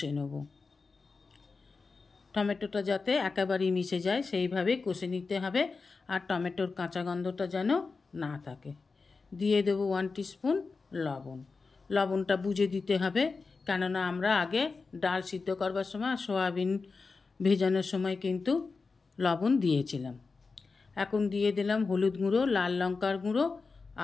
নেব। টমেটোটা যাতে একেবারেই মিশে যায় সেইভাবে কষে নিতে হবে, আর টমেটোর কাঁচা গন্ধটা যেন না থাকে। দিয়ে দেবো 1 টিস্পুন লবণ। লবণটা বুঝে দিতে হবে, কেননা আমরা আগে ডাল সিদ্ধ করবার সময় সয়াবিন ভেজানোর সময় কিন্তু লবণ দিয়েছিলাম। এখন দিয়ে দিলাম হলুদ গুঁড়ো, লাল লঙ্কার গুঁড়ো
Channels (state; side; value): quieter; right; 4.4 dB